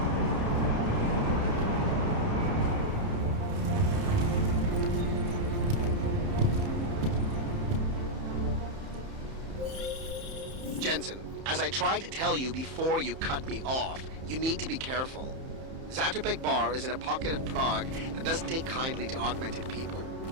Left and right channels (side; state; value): left; late; 31 ms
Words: Jensen, as I tried to tell you before you cut me off, you need to be careful. Zatopek Bar is in a pocket of Prague that doesn't take kindly to augmented people.